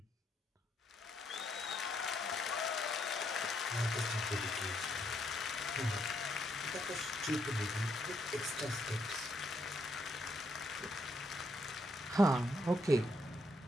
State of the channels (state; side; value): normal; both; correlation 0.75